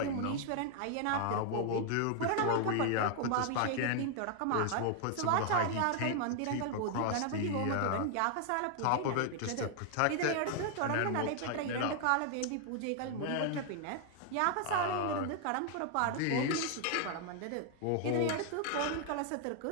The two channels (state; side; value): different; both; correlation 0.00